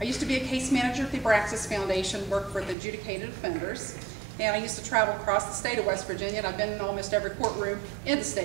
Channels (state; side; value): drops out; left; at 2.8 s